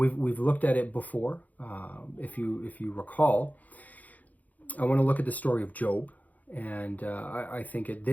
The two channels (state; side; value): late; right; 0.078 ms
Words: looked at it before. If you recall, I want to look at the story of Job. And I think at